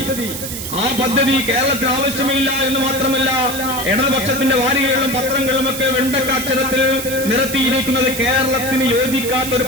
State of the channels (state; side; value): noise; right; hiss, 7 dB below the sound